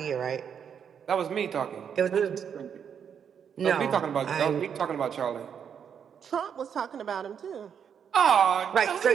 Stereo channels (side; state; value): left; quieter; 7.7 dB